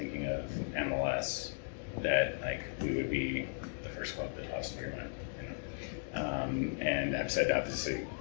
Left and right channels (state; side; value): silent; right; digital silence